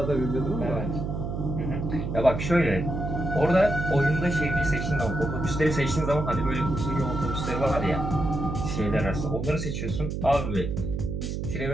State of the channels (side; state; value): right; noise; hum, 3 dB below the sound